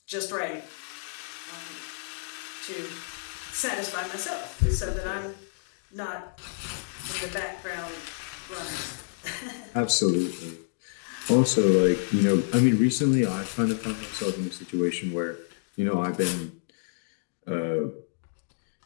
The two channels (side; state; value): right; silent; digital silence